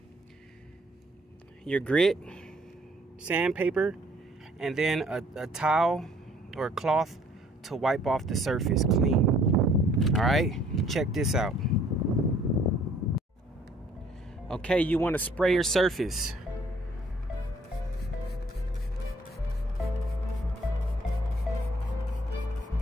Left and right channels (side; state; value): both; normal; correlation 0.60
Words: your grit, sandpaper, and then a towel or a cloth to wipe off the surface clean. All right, check this out. Okay, you want to spray your surface.